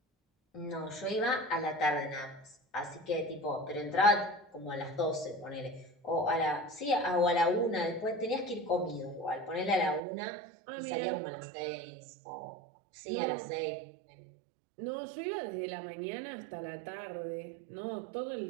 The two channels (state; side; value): drops out; left; at 10.0 s